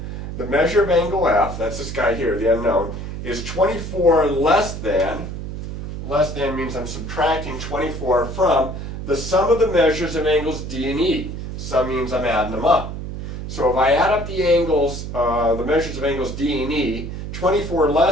the measure of angle F, that's this guy here, the unknown, is 24 less than means I'm subtracting 24 from the sum of the measures of angles D and E. Sum means I'm adding them up. So if I add up the angles, the measures of angles D and E, 24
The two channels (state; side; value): noise; right; hum, 7 dB below the sound